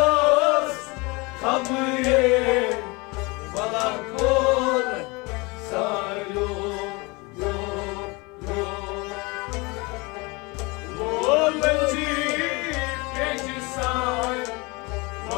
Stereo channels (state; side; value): quieter; right; 26.3 dB